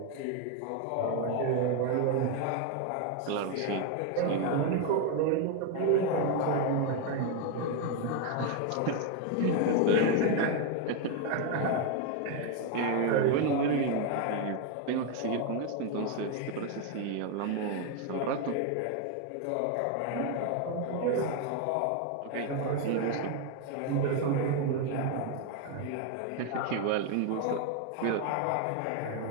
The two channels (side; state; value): both; different; correlation 0.01